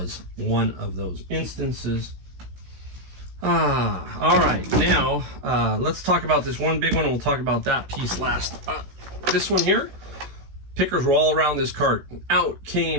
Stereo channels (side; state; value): left; late; 16 ms